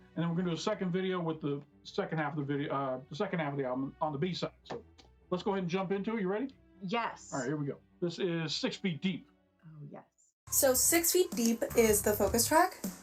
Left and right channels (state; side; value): identical; both; correlation 1.00